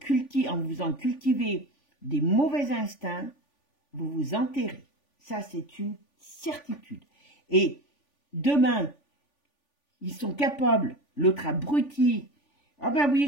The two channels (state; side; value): late; right; 3.5 ms